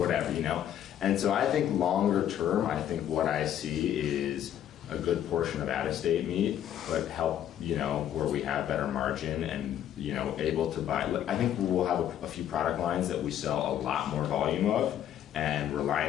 you know? And so I think longer term, I think what I see is a good portion of out-of-state meat, but help, you know, where we have better margin and, you know, able to buy. I think we'll have a few product lines that we sell a lot more volume of, and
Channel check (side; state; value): right; quieter; 10.6 dB